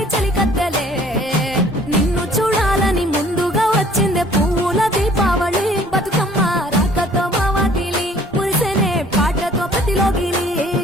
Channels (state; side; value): normal; both; correlation 0.55